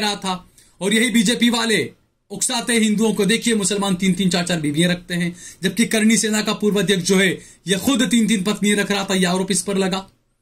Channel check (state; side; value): identical; both; correlation 1.00